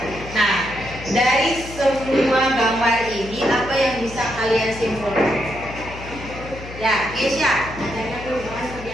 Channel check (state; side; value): noise; left; hum, 13 dB below the sound